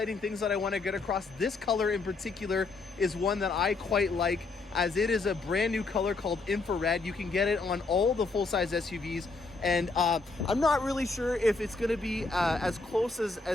things that I want to get across. This color in particular is one that I quite like, as it is a brand new color called infrared. You can get it on all the full-size SUVs, and I'm not really sure if it's going to be as close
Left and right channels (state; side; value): quieter; right; 3.9 dB